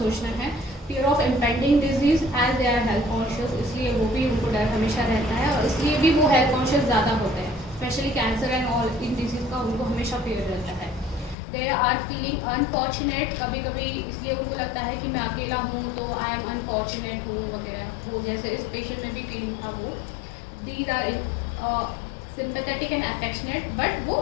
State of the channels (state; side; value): drops out; right; at 11.4 s